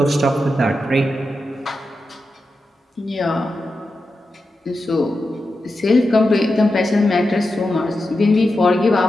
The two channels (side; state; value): both; normal; correlation 0.90